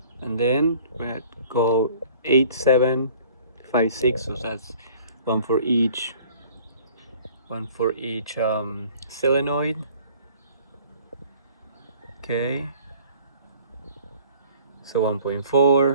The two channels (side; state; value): both; inverted; correlation -0.52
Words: and then we're gonna go 8, 7, 5, 6, so that's one for each solenoid. Okay, so